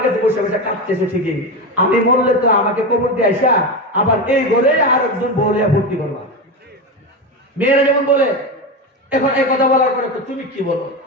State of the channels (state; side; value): normal; both; correlation 0.17